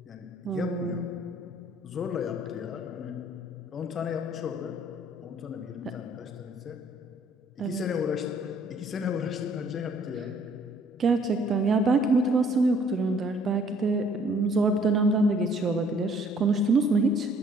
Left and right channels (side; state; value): both; normal; correlation 0.60